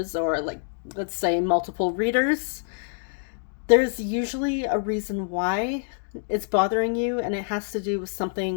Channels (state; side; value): silent; right; digital silence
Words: or like, let's say, multiple readers, there's usually a reason why it's bothering you, and it has to do with